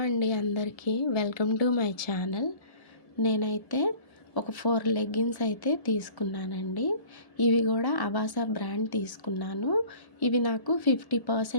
అండి అందరికీ welcome to my channel. నేనైతే ఒక 4 లెగ్గిన్స్ అయితే తీసుకున్నానండి. ఇవి కూడా అవాసా బ్రాండ్ తీసుకున్నాను. ఇవి నాకు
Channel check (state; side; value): late; right; 1.7 ms